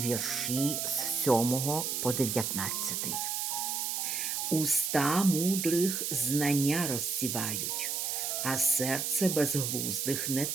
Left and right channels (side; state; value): right; noise; hiss, 1 dB below the sound